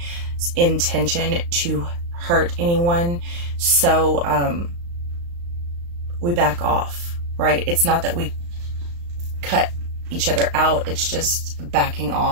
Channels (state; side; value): late; left; 35 ms